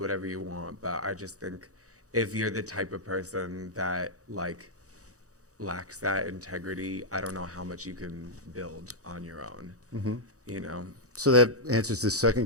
you want, but I just think if you're the type of person that like lacks that integrity, I don't know how much you can build on your own. You know, So that answers the second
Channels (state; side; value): late; left; 0.66 ms